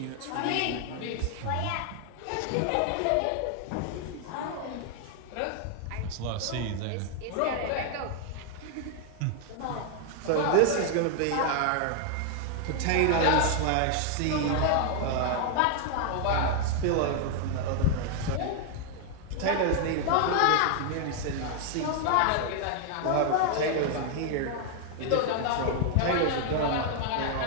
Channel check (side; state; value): both; different; correlation 0.00